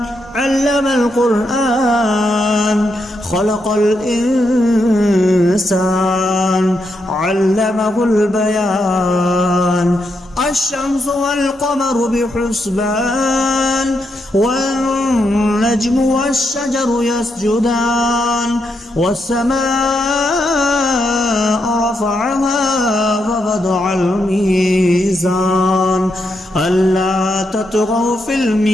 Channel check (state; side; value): normal; both; correlation 0.81